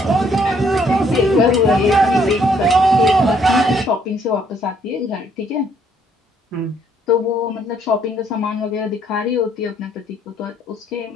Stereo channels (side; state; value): both; normal; correlation 0.67